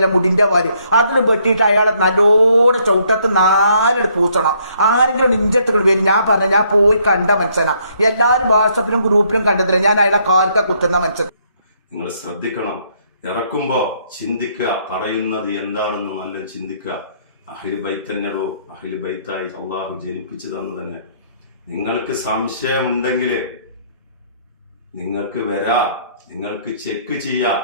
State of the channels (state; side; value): inverted; both; correlation -0.68